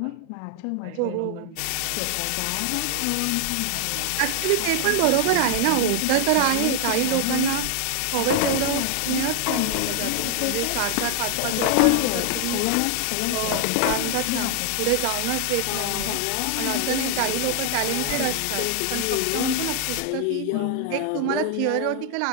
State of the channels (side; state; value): both; different; correlation 0.00